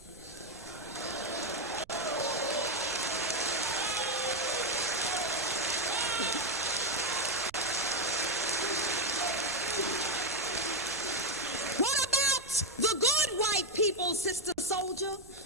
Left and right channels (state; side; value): noise; right; rumble, 25 dB below the sound